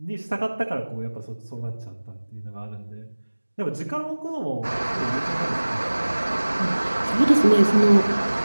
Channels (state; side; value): inverted; both; correlation -1.00